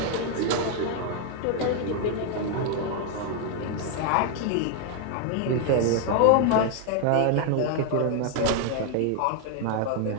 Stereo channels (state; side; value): different; both; correlation 0.00